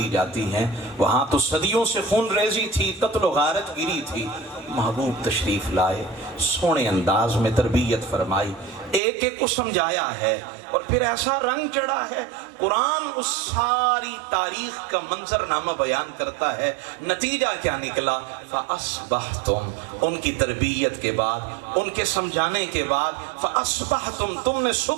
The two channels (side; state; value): left; drops out; at 9.0 s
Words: جاتی ہیں، وہاں تو صدیوں سے خون ریزی تھی، قتل و غارت گیری تھی۔ محبوب تشریف لائے، سونے انداز میں تربیت فرمائی، ایک ایک کو سمجھایا ہے، اور پھر ایسا رنگ چڑھا ہے قرآن اس ساری تاریخ کا منظرنامہ بیان کرتا ہے۔ نتیجہ کیا نکلا؟ فَأَصْبَحْتُمْ، ان کی تربیت کے بعد، ان کے سمجھانے کے بعد، فَأَصْبَحْتُمْ، تم نے